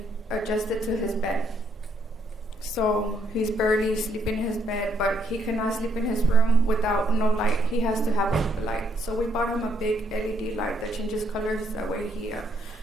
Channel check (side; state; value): both; normal; correlation 0.72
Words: adjusted to his bed. So he's barely sleeping in his bed, but he cannot sleep in his room without no light. He has to have a light. So we bought him a big LED light that changes colors. That way he